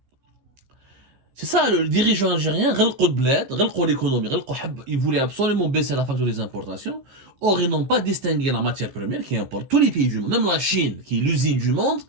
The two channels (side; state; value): left; late; 15 ms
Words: C'est ça, le dirigeant algérien, l'économie, il voulait absolument baisser la facture des importations. Or, ils n'ont pas distingué la matière première qui importe tous les pays du monde. Même la Chine, qui est l'usine du monde,